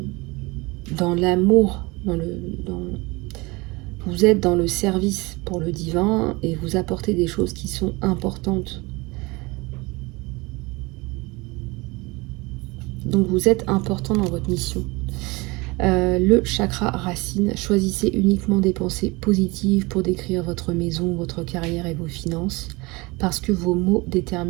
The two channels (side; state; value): left; quieter; 24.5 dB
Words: l'amour, vous êtes dans le service pour le divin et vous apportez des choses qui sont importantes. Donc vous êtes important dans votre mission. Le chakra racine, choisissez uniquement des pensées positives pour décrire votre maison, votre carrière et vos finances, parce que vos mots